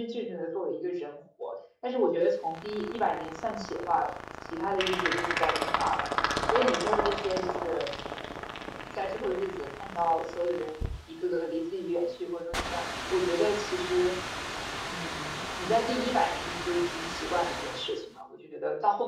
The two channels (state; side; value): identical; both; correlation 1.00